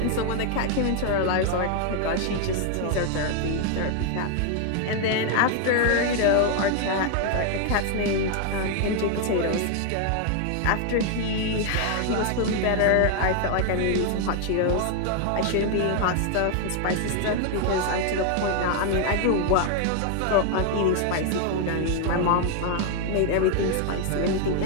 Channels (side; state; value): both; different; correlation 0.00